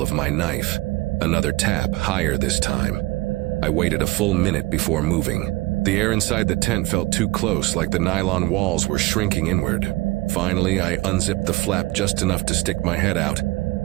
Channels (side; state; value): left; quieter; 20.6 dB